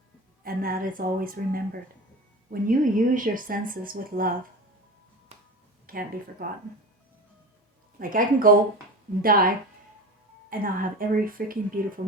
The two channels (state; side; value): normal; both; correlation 0.30